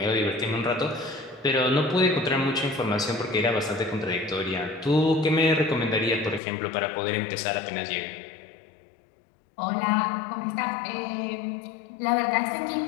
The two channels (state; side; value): drops out; right; at 6.4 s